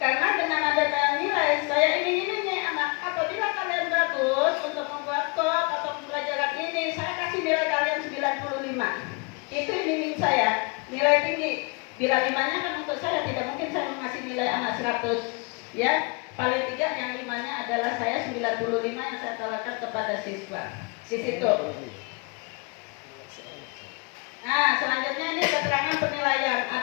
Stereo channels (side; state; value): right; quieter; 31.2 dB